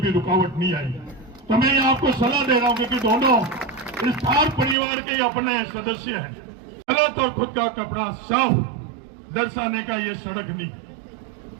भी रुकावट नहीं आई। तो मैं ये आपको सलाह दे रहा हूं कि दोनों इस थार परिवार के अपने सदस्य हैं। गलत और खुद का कपड़ा साफ दर्शाने का ये सड़क नहीं।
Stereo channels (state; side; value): drops out; left; at 4.8 s